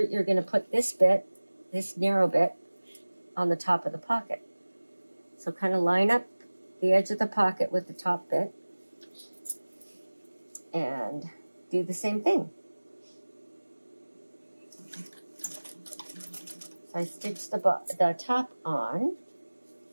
going to put this bit, this narrow bit, on the top of the pocket. So kind of line up the edge of the pocket with the top bit and do the same thing. So I stitch the top on,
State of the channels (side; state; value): both; inverted; correlation -1.00